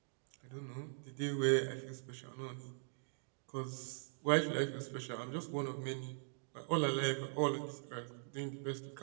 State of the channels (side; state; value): left; silent; digital silence